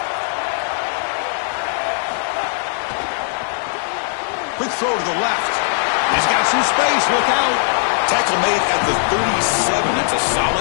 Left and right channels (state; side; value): silent; right; digital silence